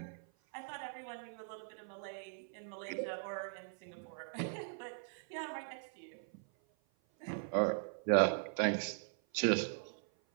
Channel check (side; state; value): left; silent; 51 dB below the other